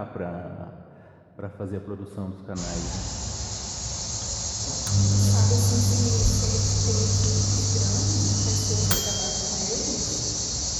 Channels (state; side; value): identical; both; correlation 1.00